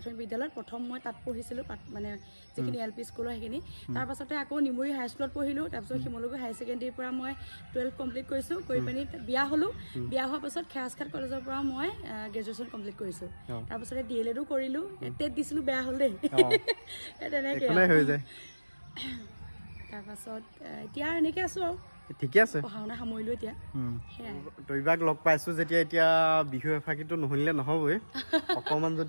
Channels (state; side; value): inverted; both; correlation -1.00